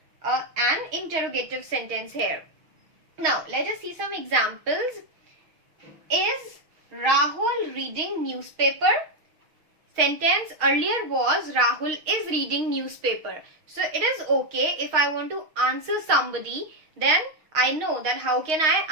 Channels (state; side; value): late; left; 6.4 ms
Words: an interrogative sentence here. Now, let us see some examples. Is Rahul reading newspaper? Sentence earlier was Rahul is reading newspaper. So it is okay if I want to answer somebody, then I know that how can